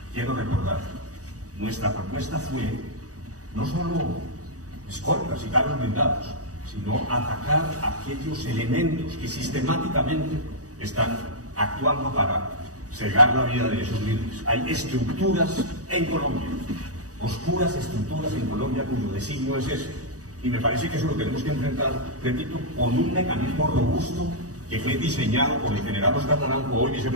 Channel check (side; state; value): left; late; 0.66 ms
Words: quiero recordar, nuestra propuesta fue no solo escoltas y carros blindados, sino atacar aquellos elementos que sistemáticamente están actuando para cegar la vida de esos líderes. Hay estructuras en Colombia, oscuras estructuras en Colombia cuyo designio es ese. Y me parece que eso lo tenemos que enfrentar, repito, con un mecanismo robusto que fue diseñado por el general Oscar Naranjo, hoy